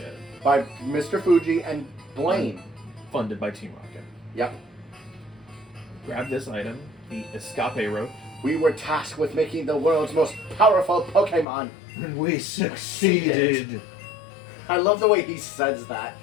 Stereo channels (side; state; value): right; drops out; at 11.5 s